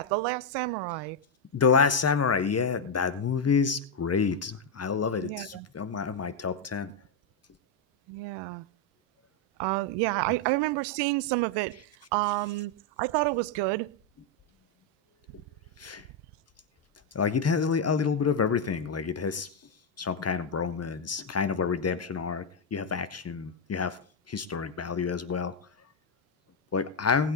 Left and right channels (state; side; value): normal; both; correlation 0.02